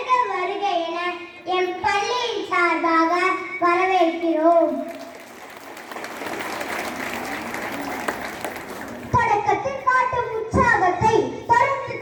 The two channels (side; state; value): both; identical; correlation 1.00